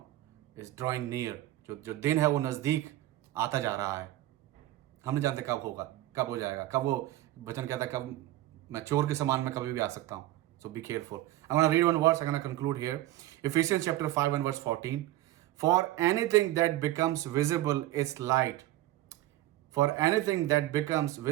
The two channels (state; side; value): quieter; left; 15.4 dB